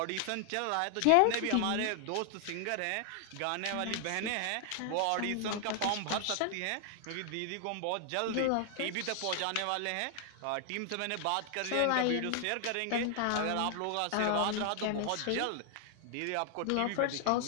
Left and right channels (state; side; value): different; both; correlation 0.00